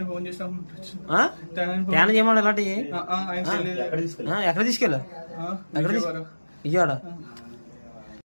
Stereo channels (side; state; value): both; inverted; correlation -1.00